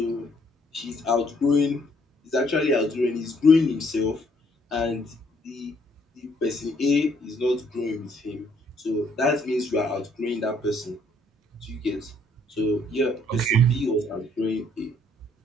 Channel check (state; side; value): normal; both; correlation 0.66